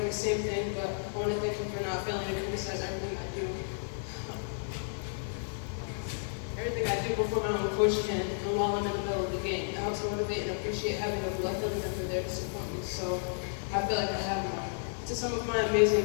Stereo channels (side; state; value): right; silent; 56 dB below the other